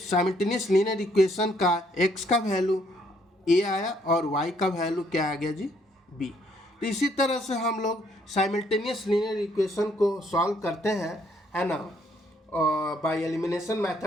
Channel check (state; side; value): normal; both; correlation 0.68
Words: लीनियर इक्वेशन का x का वैल्यू a आया और y का वैल्यू क्या आ गया जी, b। तो इसी तरह से हम लोग साइमल्टेनियस लीनियर इक्वेशन को सॉल्व करते हैं, है ना, बाय एलिमिनेशन